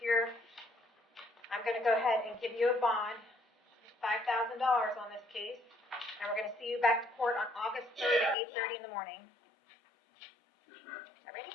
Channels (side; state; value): right; drops out; at 8.3 s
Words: I'm going to go ahead and give you a bond, $5,000 on this case, and we're going to see you back to court on August 3rd at 8:30 in the morning. Yes, ma'am. All ready?